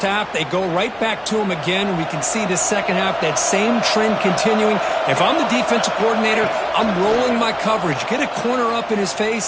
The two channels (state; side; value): identical; both; correlation 1.00